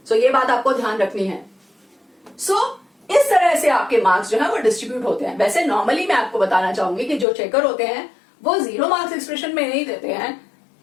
सो ये बात आपको ध्यान रखनी है। इस तरह से आपके मार्क्स जो है वो डिस्ट्रीब्यूट होते हैं। वैसे नॉर्मली मैं आपको बताना चाहूंगी कि जो चेकर होते हैं वो 0 मार्क्स एक्सप्रेशन में नहीं देते हैं,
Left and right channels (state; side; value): drops out; right; at 7.2 s